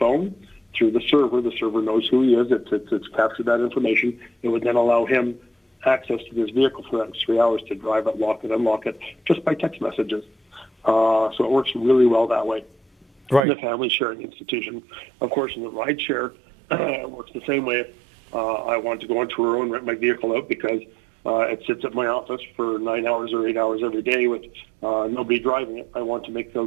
through the server knows who he is. It's captured that information. It would then allow him access to his vehicle for that 3 hours to drive it, lock it, unlock it, just by text messages. So it works really well that way. Right. In the family sharing institution. Of course, in the ride share, it works the same way. I want to go on Turo and rent my vehicle out because it sits at my office for 9 hours or 8 hours every day with nobody driving it. I want to make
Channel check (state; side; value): drops out; left; at 13.4 s